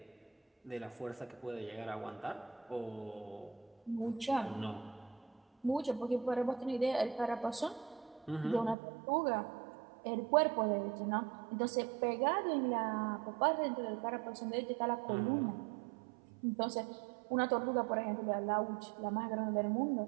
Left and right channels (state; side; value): drops out; left; at 8.8 s